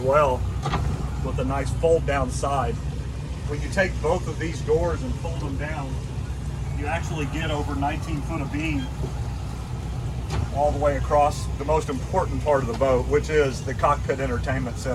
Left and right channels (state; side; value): identical; both; correlation 1.00